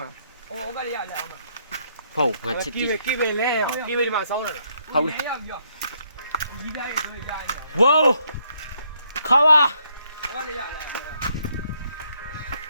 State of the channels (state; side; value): inverted; both; correlation -0.72